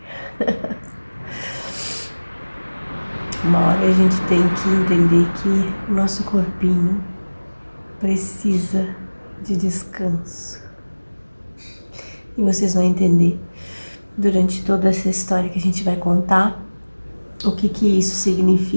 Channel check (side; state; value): both; inverted; correlation -1.00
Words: Uma hora a gente tem que entender que o nosso corpinho precisa de descanso. E vocês vão entender durante toda essa história que a gente vai contar o que isso